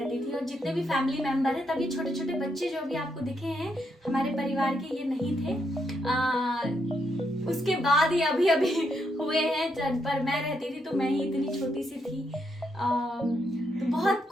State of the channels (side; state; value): both; normal; correlation 0.79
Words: थी। और जितने भी फैमिली मेम्बर हैं, तभी छोटे छोटे बच्चे जो भी आपको दिखे हैं हमारे परिवार के, ये नहीं थे। उसके बाद ही अभी अभी हुए हैं, पर मैं रहती थी तो मैं ही इतनी छोटी सी थी। तो बहुत